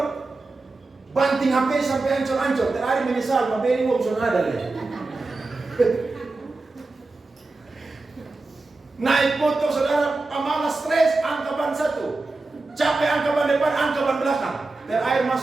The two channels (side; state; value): left; quieter; 3.4 dB